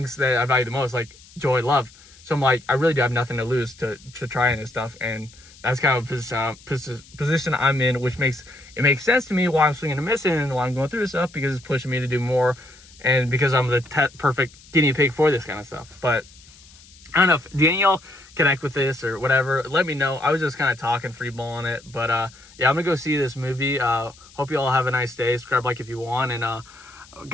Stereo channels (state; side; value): noise; left; hiss, 24 dB below the sound